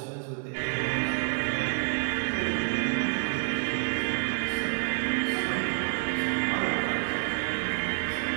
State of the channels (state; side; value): silent; left; 59 dB below the other